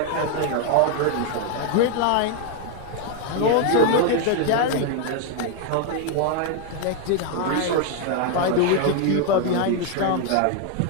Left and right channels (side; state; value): both; different; correlation 0.00